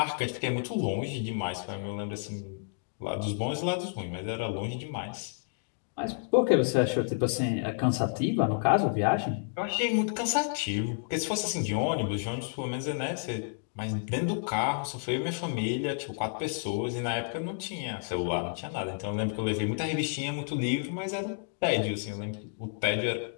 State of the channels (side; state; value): right; silent; digital silence